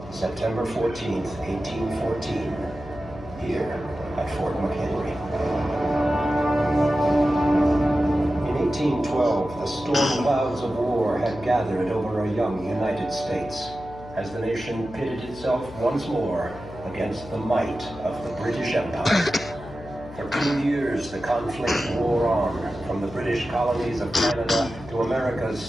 September 14th, 1814, here at Fort McHenry. In 1812, the storm clouds of war had gathered over a young United States as the nation pitted itself once more against the might of the British Empire. For 2 years, the conflict wore on, from the British colonies of Canada to America's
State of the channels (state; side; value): noise; left; hum, 16 dB below the sound